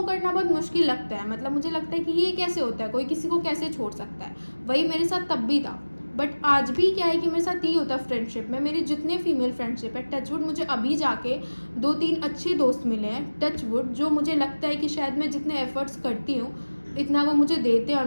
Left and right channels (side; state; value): both; inverted; correlation -1.00